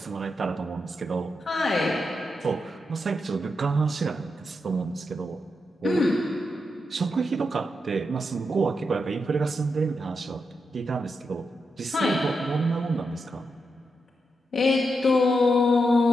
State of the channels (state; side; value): normal; both; correlation 0.85